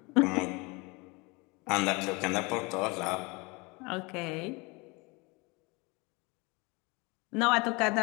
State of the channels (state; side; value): quieter; right; 27.0 dB